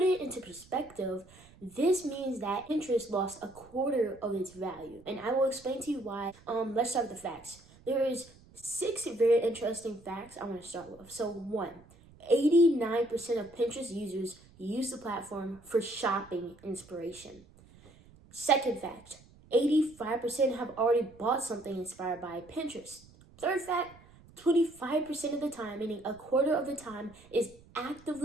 it into perspective, this means that Pinterest lost a quarter of its value. And I will explain to you why. Let's start with the facts. There is 6 very interesting facts I want to start with. So 1, 89% of Pinterest users use the platform for shopping inspiration. Second fact, 85% have already bought something inspired by Pinterest. Third fact, 25% of the time, meaning a quarter of the time, is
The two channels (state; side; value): noise; right; rumble, 25 dB below the sound